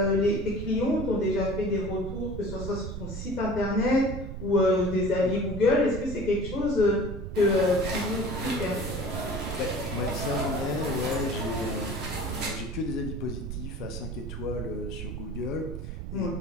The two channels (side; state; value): right; noise; rumble, 7 dB below the sound